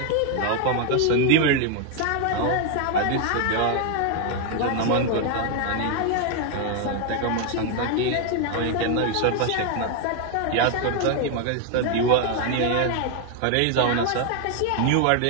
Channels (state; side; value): different; both; correlation 0.00